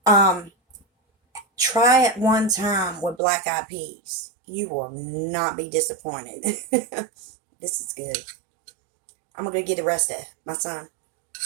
Um, Try it one time with black eyed peas. You will not be disappointed. This is good. I'm gonna go get the rest of my son,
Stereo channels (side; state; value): left; drops out; at 3.2 s